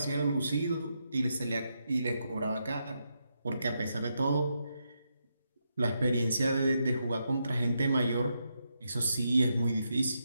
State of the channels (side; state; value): both; inverted; correlation -0.83